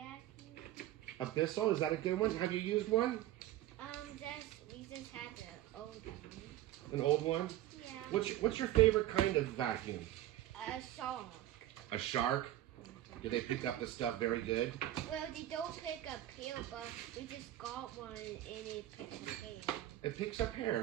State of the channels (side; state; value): left; quieter; 14.0 dB